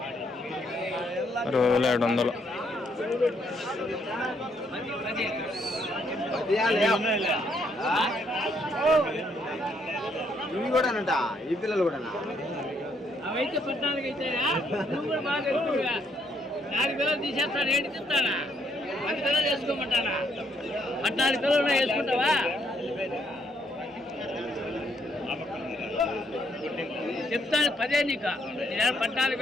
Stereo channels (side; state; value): both; normal; correlation 0.72